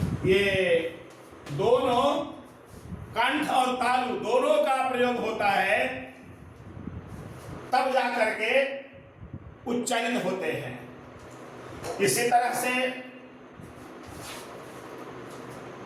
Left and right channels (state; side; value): identical; both; correlation 1.00